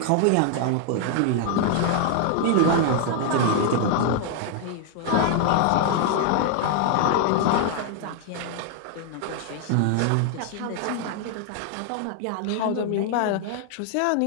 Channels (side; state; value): both; different; correlation 0.00